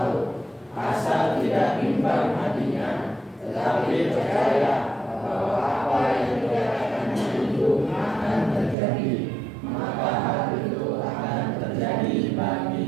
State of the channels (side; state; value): left; drops out; at 8.8 s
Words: asal tidak bimbang hatinya, tetapi percaya bahwa apa yang dikatakannya itu akan terjadi, maka hal itu akan terjadi